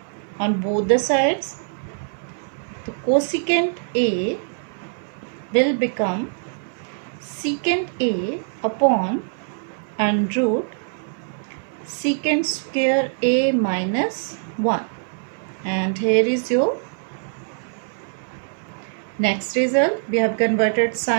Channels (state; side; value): silent; left; 63 dB below the other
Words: on both the sides, the cosecant A will become secant A upon under root secant square A minus 1. And here is your next result. We have converted